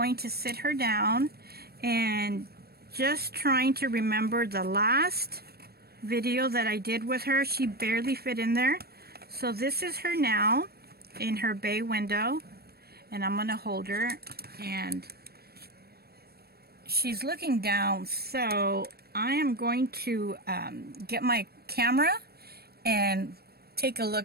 to sit her down and just trying to remember the last video that I did with her. She barely fit in there. So this is her now in her bay window, and I'm going to hold her, and she's looking down. So I am going to get my camera and take a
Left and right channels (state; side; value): late; left; 0.46 ms